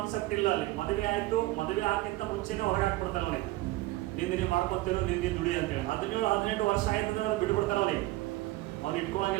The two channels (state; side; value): quieter; left; 18.5 dB